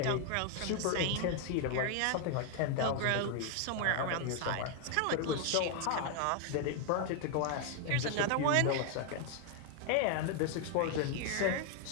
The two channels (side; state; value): both; different; correlation 0.01